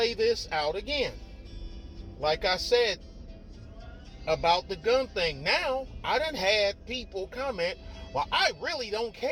this out again. Like I said about the gun thing. Now, I done had people comment, well, I really don't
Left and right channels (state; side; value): identical; both; correlation 1.00